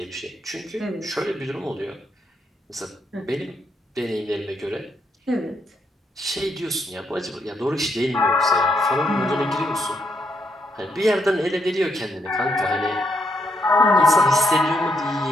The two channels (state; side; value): normal; both; correlation 0.76